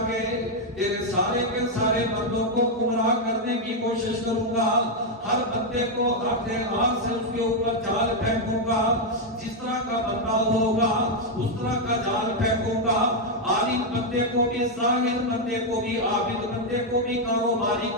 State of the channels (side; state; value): both; normal; correlation 0.01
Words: کے تیرے سارے کے سارے بندوں کو گمراہ کرنے کی کوشش کروں گا، ہر بندے کو اپنے ہاتھ سے اس کے اوپر جال پھینکوں گا، جس طرح کا بندہ ہوگا اس طرح کا جال پھینکوں گا، عالم بندے کو بھی، ظاہر بندے کو بھی، عابد بندے کو بھی، کاروباری